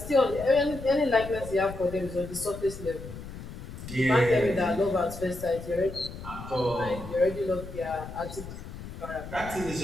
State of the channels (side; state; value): left; noise; rumble, 11 dB below the sound